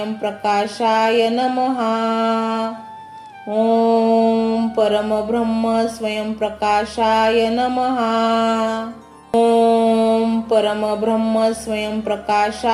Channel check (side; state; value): both; identical; correlation 1.00